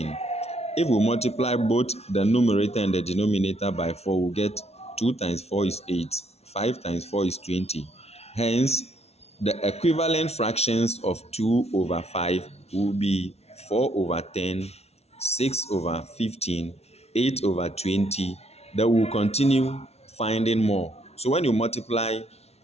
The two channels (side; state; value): right; late; 0.31 ms